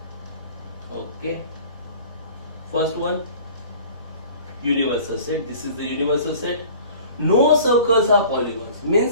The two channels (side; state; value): both; inverted; correlation -0.47